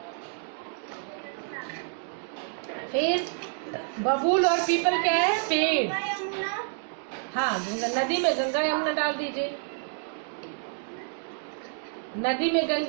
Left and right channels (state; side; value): silent; left; digital silence